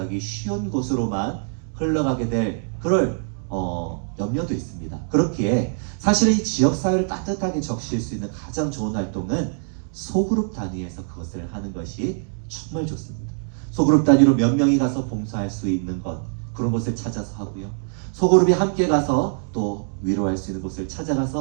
쉬운 곳으로만 흘러가게 될 그럴 염려도 있습니다. 그렇기에 사실 이 지역사회를 따뜻하게 적실 수 있는 가장 좋은 활동은 소그룹 단위에서 그것을 하는 것이 정말 좋습니다. 소그룹 단위로 몇 명이 가서 봉사할 수 있는 것, 그런 곳을 찾아서 하고요. 소그룹이 함께 가서 또 위로할 수 있는 곳을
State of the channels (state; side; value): silent; left; digital silence